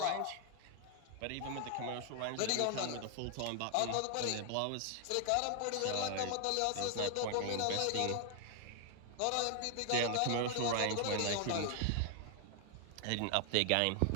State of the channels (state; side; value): different; both; correlation 0.00